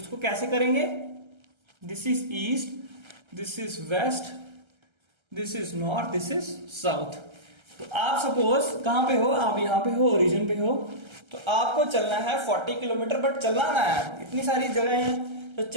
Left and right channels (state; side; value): late; left; 1.3 ms